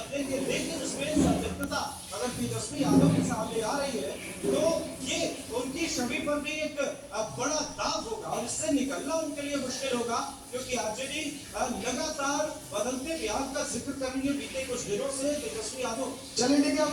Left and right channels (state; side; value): identical; both; correlation 1.00